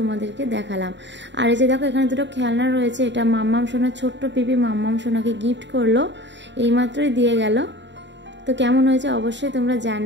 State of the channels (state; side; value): late; left; 0.52 ms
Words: দেখালাম। আর এই যে দেখো এখানে দুটো খেলনা রয়েছে, এটা মাম্মাম সোনার ছোট্ট পিপি মাম্মাম সোনাকে গিফট করলো, এইমাত্রই দিয়ে গেল। তো কেমন হয়েছে অবশ্যই তোমরা